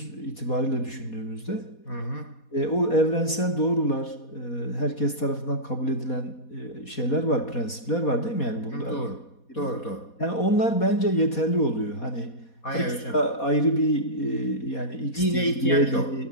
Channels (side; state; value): right; late; 4.2 ms